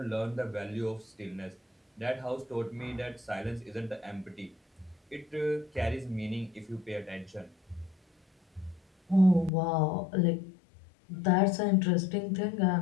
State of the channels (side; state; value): right; drops out; at 9.5 s